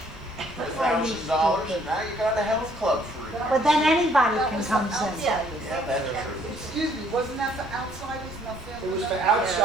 For $1,000, and now you got a health club for it. But then anybody can come in. Yeah, that's true. Excuse me, wasn't that for outsiders, not family? It was for members?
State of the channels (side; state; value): both; normal; correlation 0.63